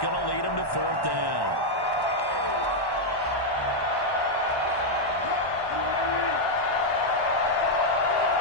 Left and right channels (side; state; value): right; late; 1.1 ms